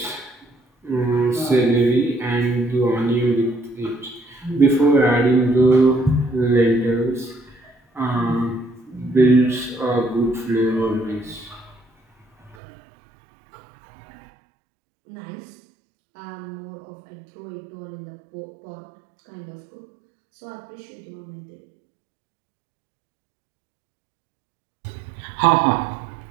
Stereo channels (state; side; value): drops out; left; at 12.6 s